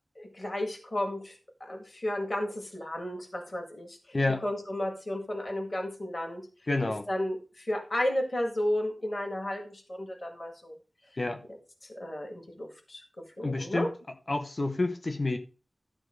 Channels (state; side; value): normal; both; correlation 0.97